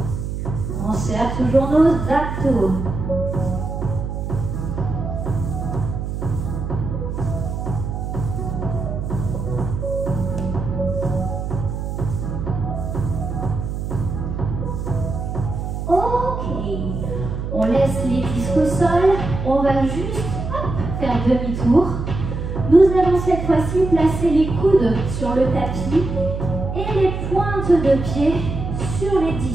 On serre toujours nos abdos. On laisse les disques au sol, on va juste faire demi-tour. Nous allons cette fois-ci placer les coudes sur le tapis et les pointes de pied sur les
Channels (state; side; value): noise; right; hum, 4 dB below the sound